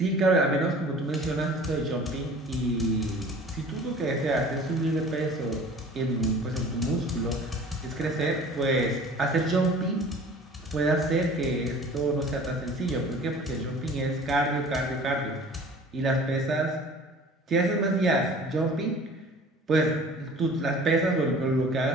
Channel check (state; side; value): normal; both; correlation 0.45